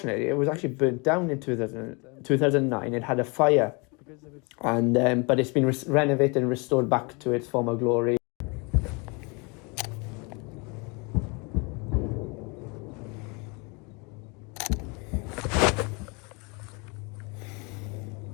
it was actually burnt down in 2009. It had a fire, and but it's been renovated and restored back to its former glory.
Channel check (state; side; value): quieter; right; 30.5 dB